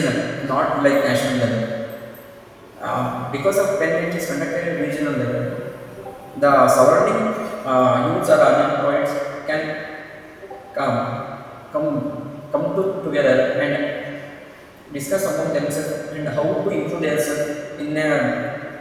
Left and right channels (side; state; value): both; identical; correlation 1.00